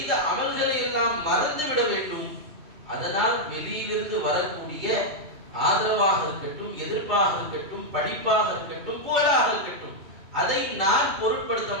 அமல்களை எல்லாம் மறந்து விட வேண்டும். அதனால் வெளியிலிருந்து வரக்கூடிய ஆதரவாக இருக்கட்டும், எதிர்ப்பாக இருக்கட்டும், படிப்பாக இருக்கட்டும், புகழாக இருக்கட்டும், அதை நான் பொருட்படுத்த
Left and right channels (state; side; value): late; left; 2.2 ms